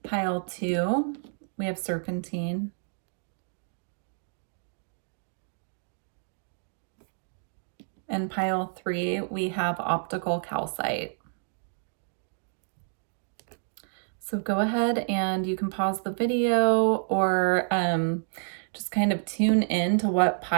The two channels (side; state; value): left; silent; digital silence